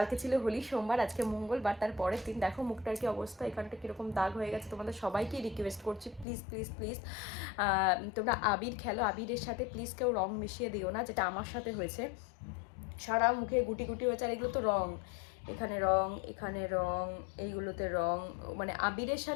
ছিল হোলি, সোমবার, আজকে মঙ্গলবার, তার পরের দিন। দেখো মুখটার কি অবস্থা, এখানটা কীরকম দাগ হয়ে গেছে। তোমাদের সবাইকেই রিকোয়েস্ট করছি, প্লিজ প্লিজ প্লিজ তোমরা আবির খেলো, আবিরের সাথে প্লিজ কেউ রং মিশিয়ে দিও না, যেটা আমার সাথে হয়েছে। সারা মুখে গুটি গুটি হয়েছে, আর এগুলো তো রং, এখানে রং, এখানে রং, এইগুলোতে রং, মানে আবিরের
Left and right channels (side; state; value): right; drops out; at 6.2 s